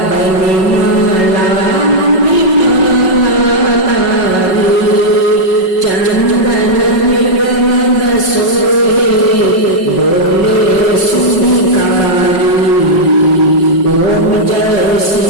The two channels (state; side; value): late; right; 5.4 ms